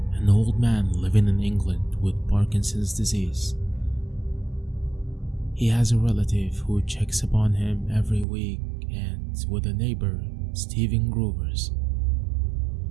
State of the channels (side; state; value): left; drops out; at 8.2 s